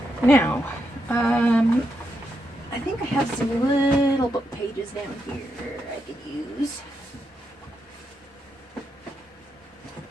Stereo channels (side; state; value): both; normal; correlation 0.83